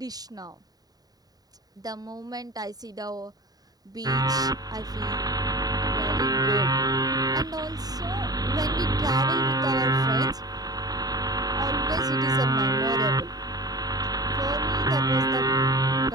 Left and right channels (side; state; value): left; late; 0.18 ms